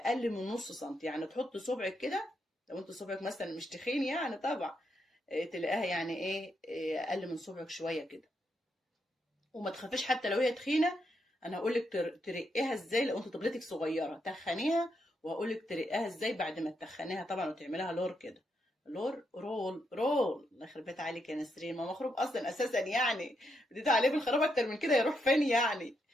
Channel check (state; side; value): normal; both; correlation 0.81